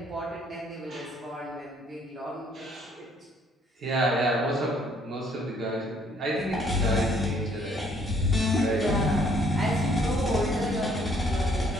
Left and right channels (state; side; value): normal; both; correlation 0.64